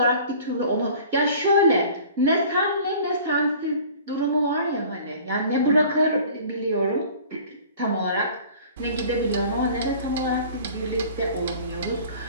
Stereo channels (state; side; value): inverted; both; correlation -0.46